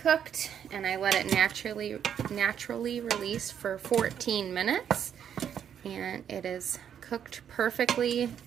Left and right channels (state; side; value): quieter; left; 8.8 dB